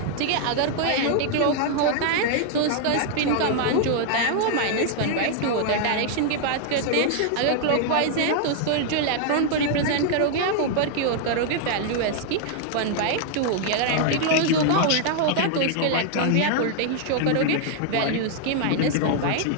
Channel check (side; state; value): both; different; correlation 0.00